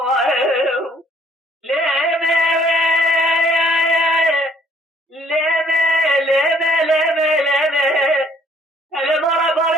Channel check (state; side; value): normal; both; correlation 0.61